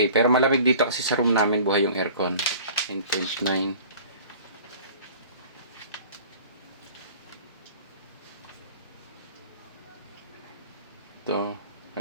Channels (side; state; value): both; inverted; correlation -0.45